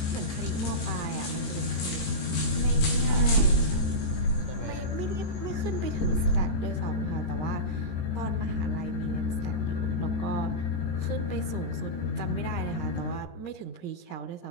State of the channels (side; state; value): right; late; 17 ms